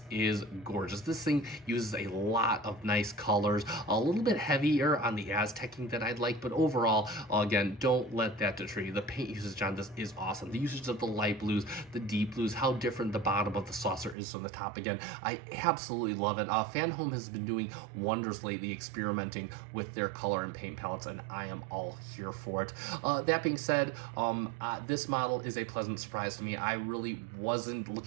is gorgeous. This thing uses a lot of nice colors, a little bit heavier on the Aztecing than I'd like, but overall, again, don't let that deter you. The paint usage on this is awesome. The usage of the light blues, the deep blues, how different the bottom of the saucer is from the top. Again, I absolutely love it. Fanhome has been doing wonders lately, experimenting with their color and paint palettes, and I am all here for it. That being said, this model is a pleasant surprise to me. I really wasn't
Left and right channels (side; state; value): left; drops out; at 14.2 s